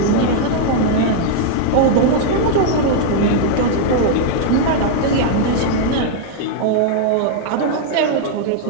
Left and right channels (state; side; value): different; both; correlation 0.00